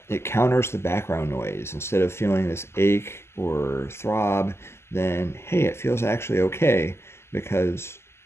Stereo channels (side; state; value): right; late; 0.12 ms